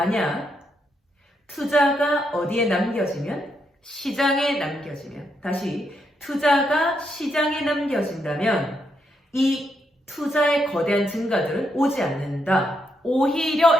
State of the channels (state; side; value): normal; both; correlation 0.79